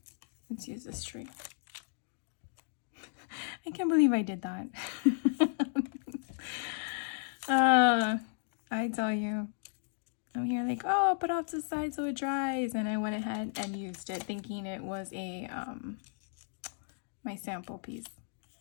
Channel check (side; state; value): right; silent; digital silence